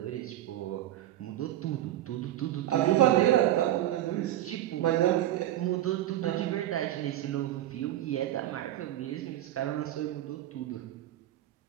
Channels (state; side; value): quieter; left; 13.4 dB